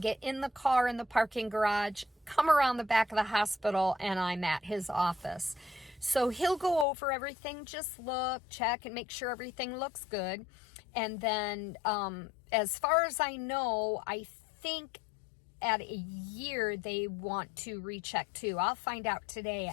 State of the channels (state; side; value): drops out; right; at 6.9 s